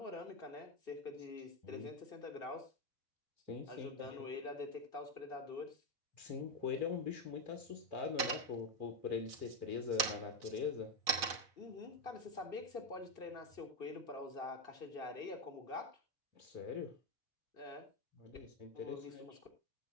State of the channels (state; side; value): late; left; 4.1 ms